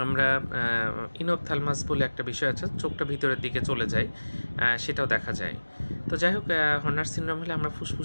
আমরা ইনোপথ্যালমাস বলে একটা বিষয় আছে, চোখটা ভিতরের দিকে চলে যায়, সেটাও দেখা যায়। তো যাই হোক, হর্নার সিনড্রোম হলে আমরা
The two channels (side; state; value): both; inverted; correlation -1.00